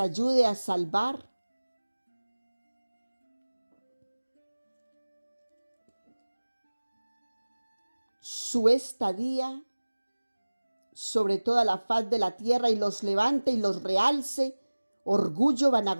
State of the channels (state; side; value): inverted; both; correlation -1.00